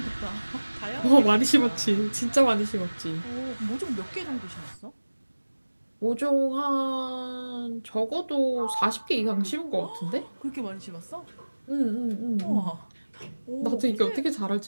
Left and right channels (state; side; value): inverted; both; correlation -1.00